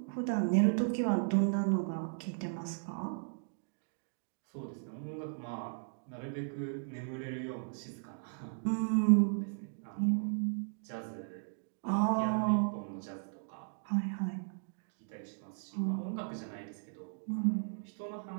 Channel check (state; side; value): silent; left; digital silence